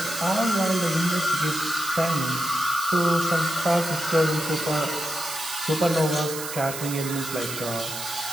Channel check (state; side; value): noise; right; hiss, 8 dB below the sound